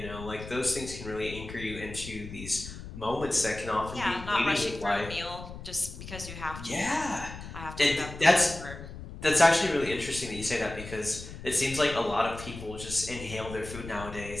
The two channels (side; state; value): left; noise; rumble, 12 dB below the sound